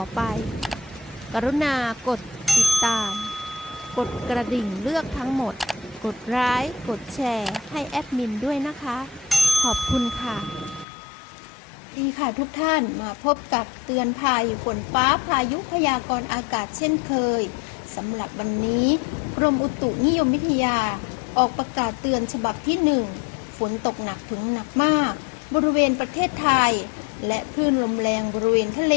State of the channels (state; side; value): drops out; right; at 10.9 s